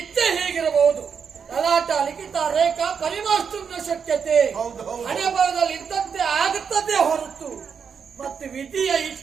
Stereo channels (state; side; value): quieter; left; 6.6 dB